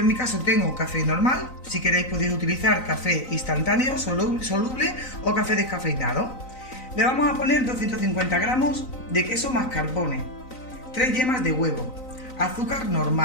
en mi caso tengo café normal, si queréis podéis utilizar café instantáneo, soluble o café descafeinado. Le vamos a poner 250 gramos de queso mascarpone, 3 yemas de huevo, azúcar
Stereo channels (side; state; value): right; late; 3.9 ms